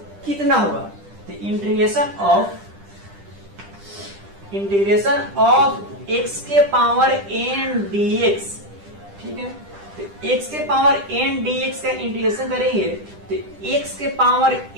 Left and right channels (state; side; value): late; left; 10 ms